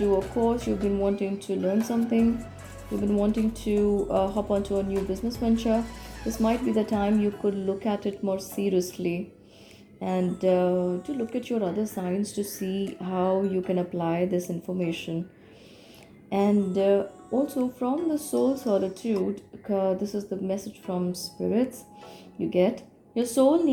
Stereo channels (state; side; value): identical; both; correlation 1.00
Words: a course, you've been wanting to learn something, you've been wanting to hop onto a new business venture, this might be the time you could look at it more seriously, and to look at your other signs to see how you can apply this information. And also from the soul solitude, this is the message from spirits you get. Your soul